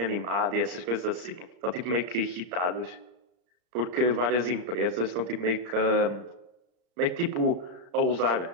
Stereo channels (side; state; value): left; late; 34 ms